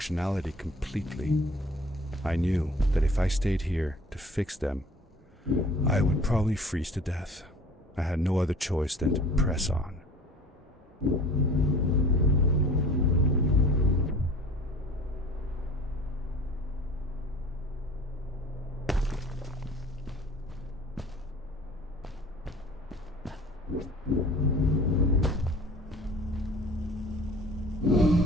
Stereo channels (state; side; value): normal; both; correlation 0.47